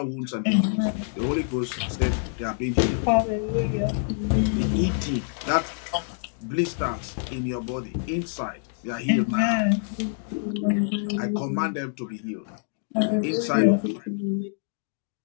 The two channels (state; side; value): silent; right; digital silence